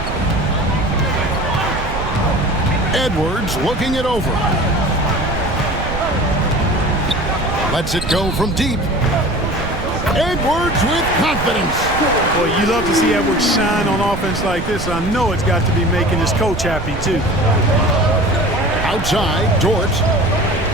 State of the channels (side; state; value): right; noise; rumble, 7 dB below the sound